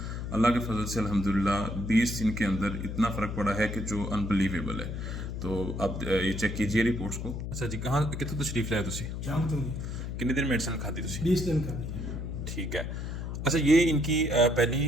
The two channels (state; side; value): noise; left; hum, 5 dB below the sound